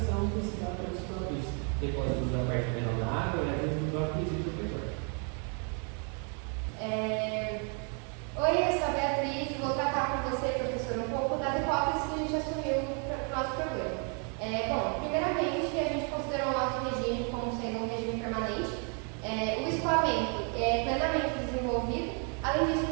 que se dá pelos próprios depósitos da parte menor da água e às vezes do próprio resíduo do petróleo. Oi, eu sou a Beatriz, vou tratar com você, professor, um pouco das hipóteses que a gente assumiu para o nosso problema. Bom, primeiramente, a gente considerou o nosso regime como sendo um regime permanente. O escoamento é plenamente desenvolvido. Além disso,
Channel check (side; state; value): left; quieter; 39.1 dB